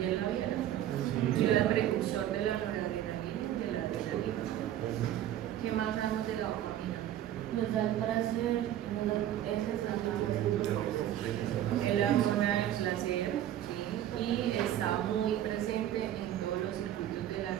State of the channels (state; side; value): quieter; left; 11.9 dB